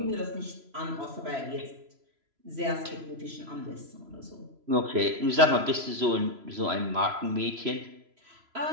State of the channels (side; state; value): left; late; 3.0 ms